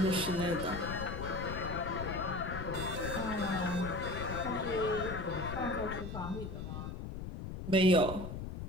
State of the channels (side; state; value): left; noise; rumble, 6 dB below the sound